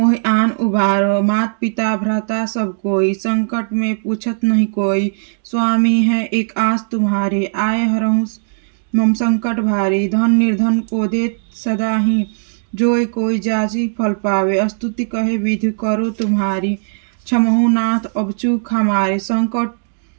आन उबारो। मात पिता भ्राता सब कोई संकट में पूछत नहीं कोई। स्वामी है एक आस तुम्हारी आए हरहु मम संकट भारी। धन निर्धन को देत सदा ही जोय कोई जाची फल पावे। स्तुति कहे विधि करो तुम्हारी क्षमहु नाथ अब चूक हमारी।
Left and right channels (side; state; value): left; silent; digital silence